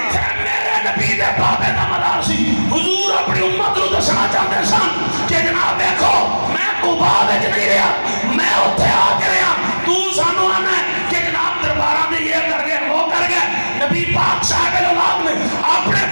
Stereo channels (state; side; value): inverted; both; correlation -1.00